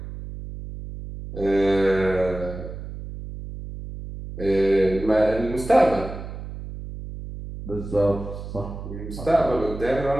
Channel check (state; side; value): noise; right; hum, 10 dB below the sound